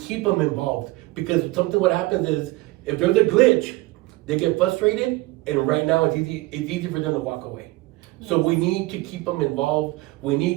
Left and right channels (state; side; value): quieter; left; 20.3 dB